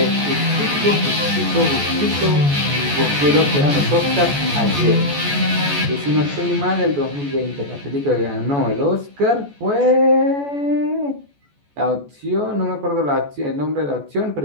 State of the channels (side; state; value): left; late; 14 ms